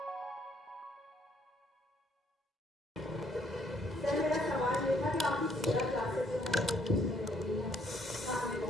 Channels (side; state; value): both; normal; correlation 0.66